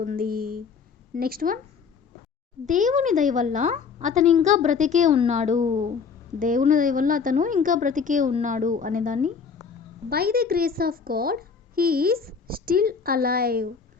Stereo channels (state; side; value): quieter; right; 5.8 dB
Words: నెక్స్ట్ వన్, దేవుని దయ వల్ల అతను ఇంకా బ్రతికే ఉన్నాడు. దేవుని దయ వల్ల అతను ఇంకా బ్రతికే ఉన్నాడు అనేదాన్ని by the grace of God he is still alive.